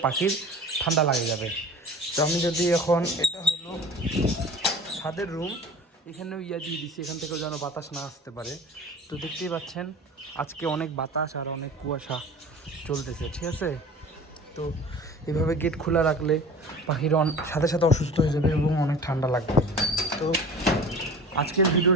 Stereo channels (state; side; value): normal; both; correlation 0.39